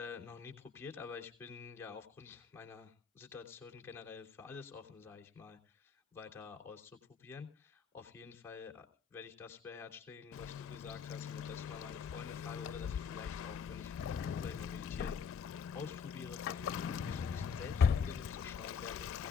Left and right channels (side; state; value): right; quieter; 6.3 dB